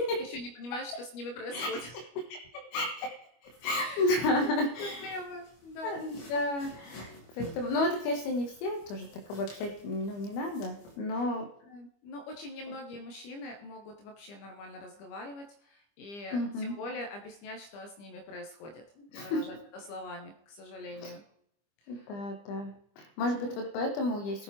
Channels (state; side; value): late; right; 25 ms